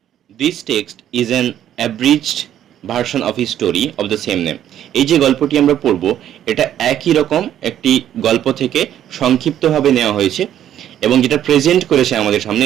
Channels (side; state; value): left; quieter; 10.9 dB